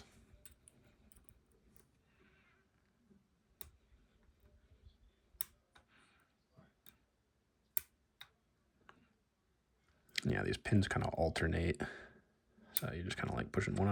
Yeah, these pins kind of alternate. So you're just kind of like pushing one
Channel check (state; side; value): identical; both; correlation 1.00